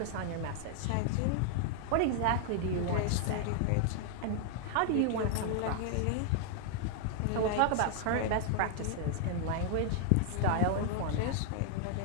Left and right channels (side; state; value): both; different; correlation 0.00